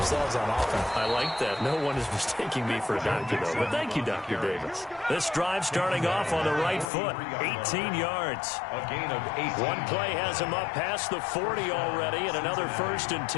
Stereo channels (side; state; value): right; drops out; at 6.9 s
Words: on offense. I like that. No one is mistaking me for a doctor, though. But thank you, Dr. Davis. This drive starting off on the right foot. 18 yards. A gain of 8. One play has him up past the 40 already, and another 1st and